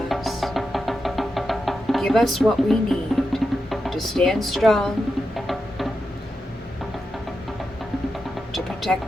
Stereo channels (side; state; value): both; normal; correlation 0.88